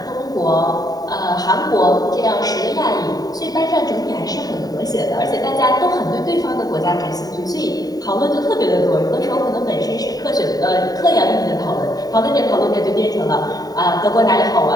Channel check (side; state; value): right; late; 0.18 ms